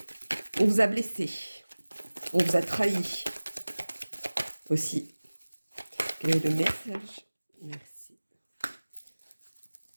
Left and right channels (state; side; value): inverted; both; correlation -1.00